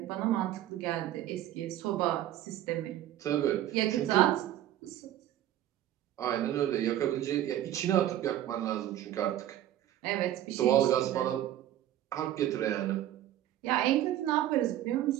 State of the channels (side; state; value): left; quieter; 12.7 dB